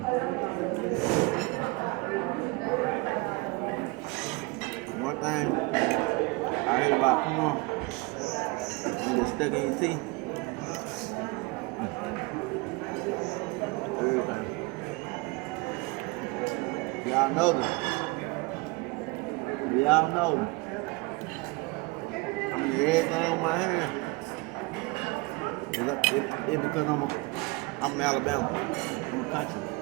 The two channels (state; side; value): quieter; left; 24.9 dB